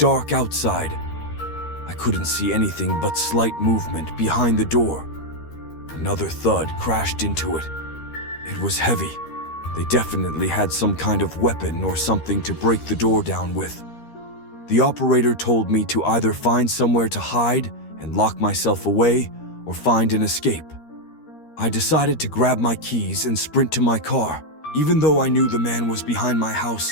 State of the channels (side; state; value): right; late; 13 ms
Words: outside, I couldn't see anything but slight movement behind the door. Another thud crashed into it. It was heavy. They definitely had some kind of weapon or something to break the door down with. The operator told me to either find somewhere to hide and lock myself away or find an escape. I decided to grab my keys and sprint to my car. Even though I knew the man was behind my